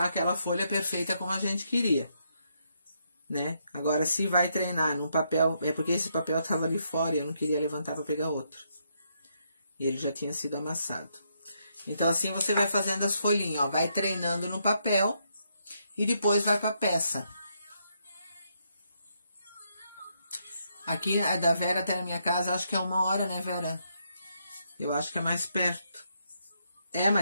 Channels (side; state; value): both; inverted; correlation -0.77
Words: aquela folha perfeita como a gente queria, né? Agora, se vai treinar num papel, é porque esse papel tava ali fora e eu não queria levantar para pegar outro. E ele já tinha sido amassado. Então, assim você vai fazendo as folhinhas, ó, vai treinando no papel e depois vai pra peça. Aqui, da Vera até a minha casa, acho que é 1 hora, né, Vera? Eu acho que é mais perto. É